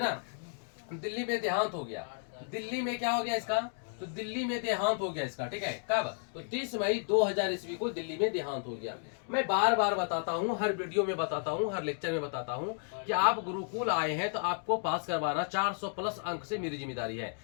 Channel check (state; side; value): silent; right; 56 dB below the other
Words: ना, दिल्ली में देहांत हो गया। दिल्ली में क्या हो गया इसका? तो दिल्ली में देहांत हो गया इसका। ठीक है, कब? तो 30 मई 2000 ईस्वी को दिल्ली में देहांत हो गया। मैं बार बार बताता हूँ, हर वीडियो में बताता हूँ, हर लेक्चर में बताता हूँ कि आप गुरुकुल आए हैं तो आपको पास करवाना 400 प्लस अंक से मेरी जिम्मेदारी है।